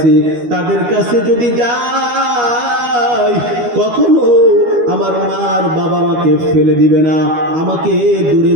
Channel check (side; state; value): left; late; 12 ms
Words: তাদের কাছে যদি যাই কখনো আমার মা আর বাবা আমাকে ফেলে দিবে না, আমাকে দূরে